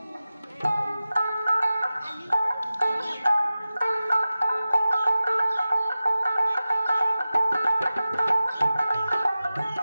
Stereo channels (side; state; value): both; inverted; correlation -0.95